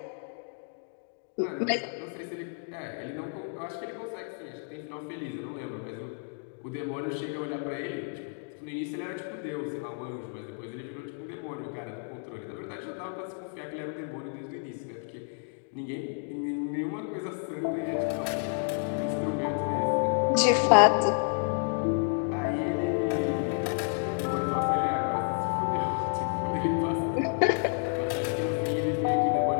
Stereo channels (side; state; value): right; silent; 58 dB below the other